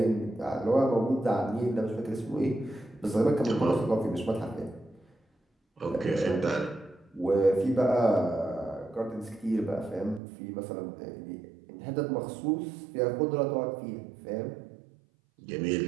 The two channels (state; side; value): drops out; left; at 10.2 s